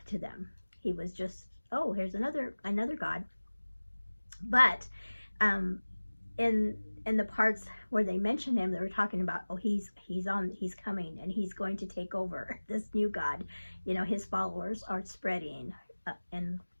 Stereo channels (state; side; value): inverted; both; correlation -1.00